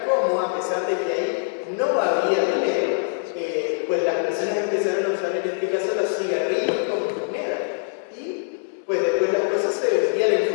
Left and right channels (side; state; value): right; silent; 63 dB below the other